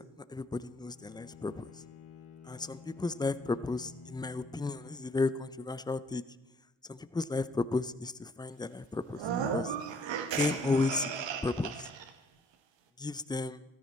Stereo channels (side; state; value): both; normal; correlation 0.63